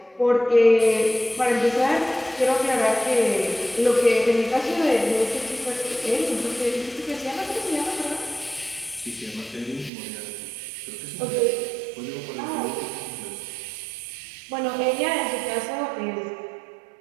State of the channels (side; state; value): left; drops out; at 9.9 s